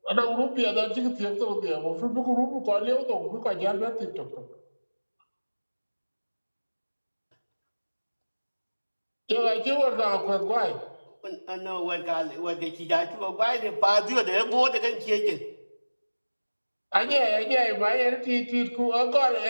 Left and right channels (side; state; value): both; inverted; correlation -1.00